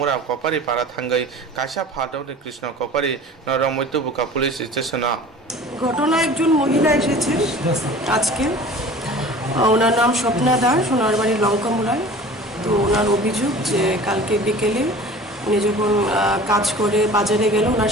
कपारि पारा थांगै काशा फादौनि कृष्ण कपारि नरमैत्य बुका पुलिस स्टेशना। ঘটনা একজন মহিলা এসেছে আজকে, ওনার নাম স্বপ্না দাস, ওনার বাড়ি লঙ্কামুড়ায়। তো ওনার অভিযোগ যে কালকে বিকেলে উনি যখন কাজ করে বাজারে গেল, ওনার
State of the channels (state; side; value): normal; both; correlation 0.42